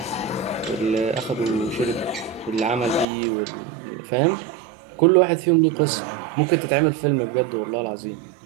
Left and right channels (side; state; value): left; drops out; at 3.1 s